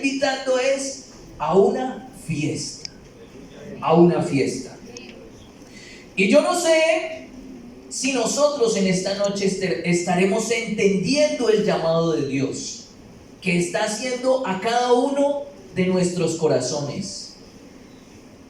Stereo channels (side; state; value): both; identical; correlation 1.00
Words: a una fiesta. A una fiesta. Y yo no sé si nosotros en esta noche estaremos entendiendo el llamado de Dios que está haciendo a cada uno de nuestros corazones.